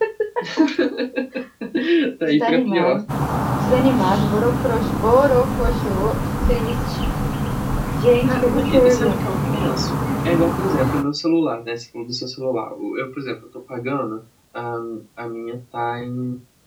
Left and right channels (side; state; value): both; identical; correlation 1.00